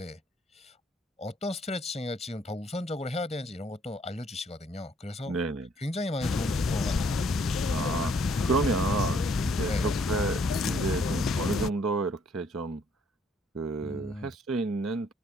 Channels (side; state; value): both; normal; correlation 0.65